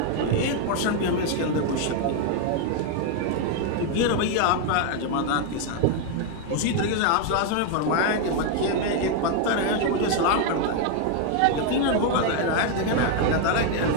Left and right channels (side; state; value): both; different; correlation 0.01